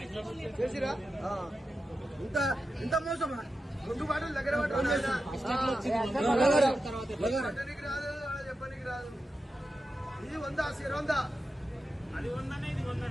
చేసిరా ఇంత ఇంత మోసమా? 2 బాటలు దగ్గర చెప్పనికి రాదు, చెప్పనికి రాదు. ఇది 100 అది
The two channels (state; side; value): normal; both; correlation 0.90